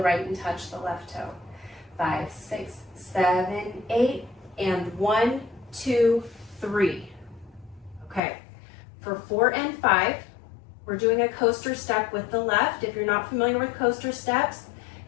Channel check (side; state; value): right; drops out; at 8.2 s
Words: and touch the left toe. 5, 6, 7, 8, and 1, 2, 3. Okay, for 4 and 5, we're doing a coaster step with the left. If you're not familiar with coaster steps,